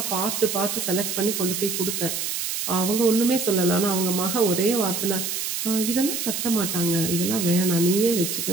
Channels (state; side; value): noise; right; hiss, 3 dB below the sound